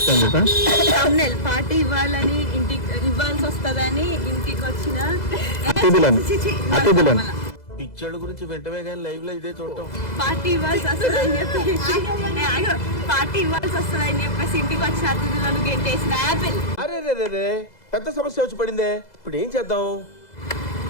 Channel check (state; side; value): late; right; 2.0 ms